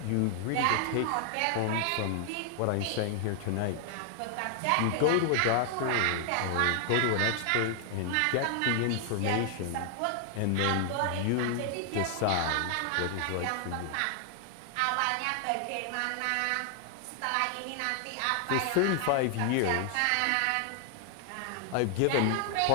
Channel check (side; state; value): both; different; correlation 0.00